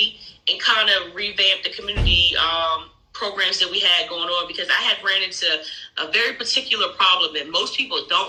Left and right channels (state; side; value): identical; both; correlation 1.00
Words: and kind of revamp the community programs that we had going on, because I had ran into a very particular problem that most people